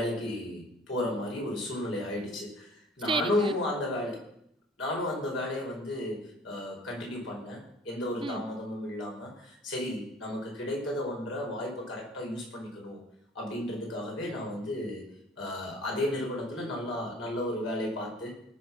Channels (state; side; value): normal; both; correlation 0.50